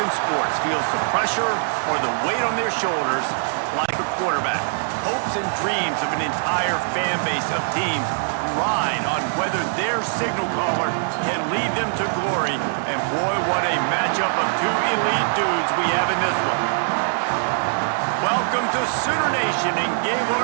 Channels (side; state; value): left; silent; digital silence